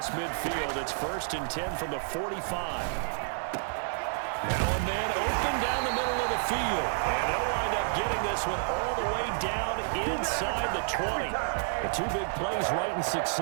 midfield. It's 1st and 10 from the 45. Now a man open down the middle of the field. And they'll wind up getting this one all the way down inside the 20. The two big plays right in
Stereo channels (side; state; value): left; silent; 58 dB below the other